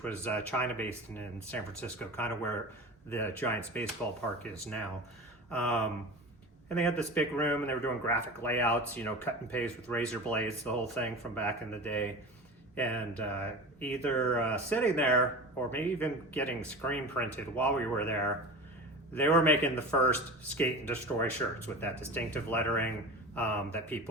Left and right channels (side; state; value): both; normal; correlation 0.32